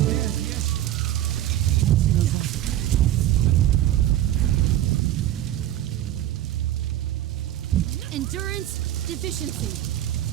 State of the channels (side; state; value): left; quieter; 13.1 dB